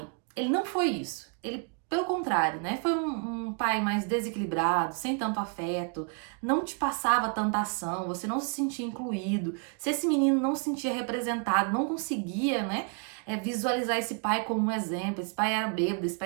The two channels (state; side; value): quieter; left; 37.8 dB